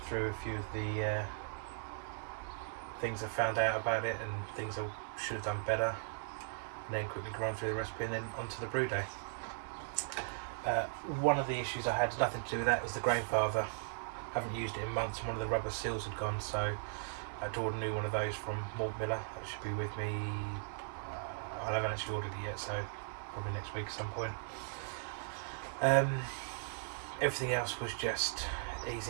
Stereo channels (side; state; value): left; silent; digital silence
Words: through a few of the things I found out about it and things I should have done better, and then quickly run through the recipe and then onto the brew day. One of the issues I had, nothing to do with that, was the grainfather. Haven't used it in months, and one of the rubber seals had gone, so I had to order a new one of those from Malt Miller. That should be with me, I haven't actually ordered it yet, so probably next week at some point. Everything else was just